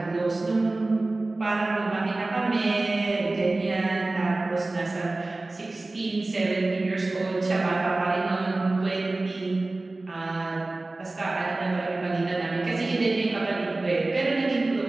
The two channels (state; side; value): quieter; left; 3.0 dB